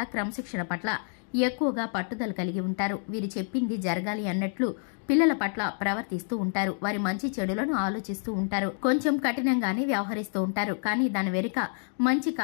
క్రమశిక్షణ పట్ల ఎక్కువగా పట్టుదల కలిగి ఉంటారు. వీరు చెప్పింది జరగాలి అన్నట్లు పిల్లల పట్ల ప్రవర్తిస్తూ ఉంటారు. వారి మంచి చెడులను ఆలోచిస్తూ ఉంటారు. కొంచెం కఠినంగానే వ్యవహరిస్తూ ఉంటారు. కానీ దాని వెనుక మంచి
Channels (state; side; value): silent; right; 56 dB below the other